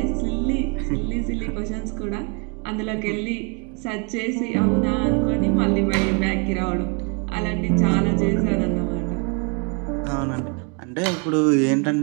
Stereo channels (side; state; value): left; quieter; 34.1 dB